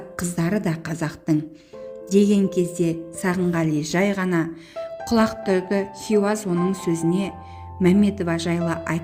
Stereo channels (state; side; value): identical; both; correlation 1.00